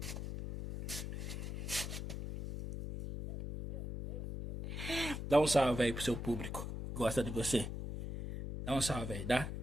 Dá um salve aí pro seu público. Gosta de você. Dá um salve aí, dá?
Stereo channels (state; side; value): noise; left; hum, 5 dB below the sound